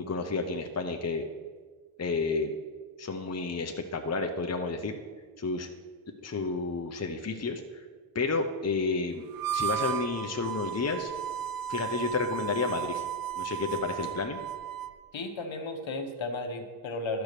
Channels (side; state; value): both; normal; correlation -0.01